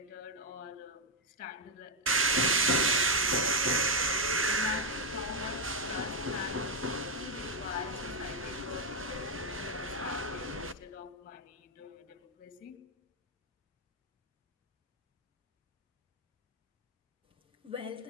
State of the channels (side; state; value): both; normal; correlation 0.01